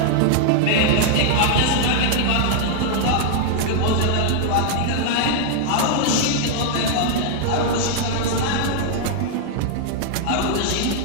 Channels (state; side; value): different; both; correlation 0.00